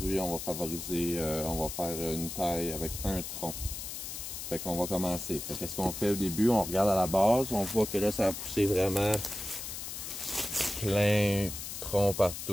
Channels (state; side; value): noise; left; hiss, 7 dB below the sound